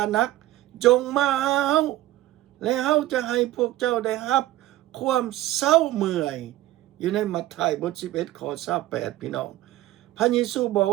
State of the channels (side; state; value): left; quieter; 15.5 dB